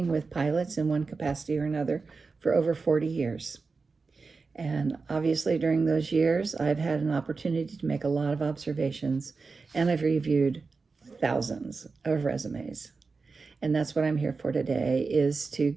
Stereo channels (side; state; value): left; quieter; 4.4 dB